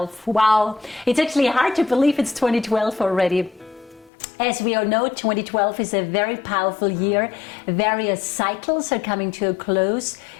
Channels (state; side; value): drops out; right; at 4.1 s